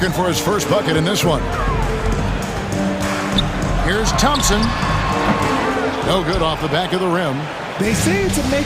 for his first bucket in this one. Here's Thompson. No good off the back of the rim. They say it's a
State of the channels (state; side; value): identical; both; correlation 1.00